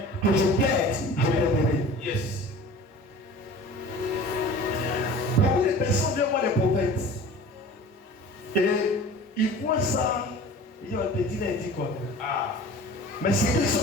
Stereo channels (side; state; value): both; normal; correlation 0.41